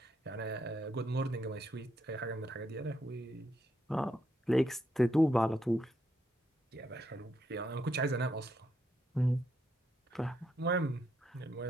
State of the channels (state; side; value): normal; both; correlation 0.78